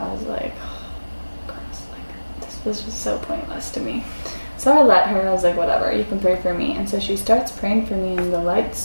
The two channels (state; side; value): inverted; both; correlation -1.00